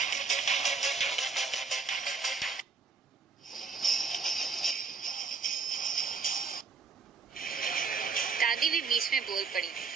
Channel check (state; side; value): quieter; left; 4.9 dB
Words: दादी भी बीच में बोल पड़ी।